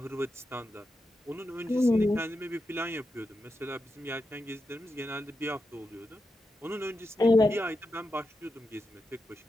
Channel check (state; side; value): normal; both; correlation 0.88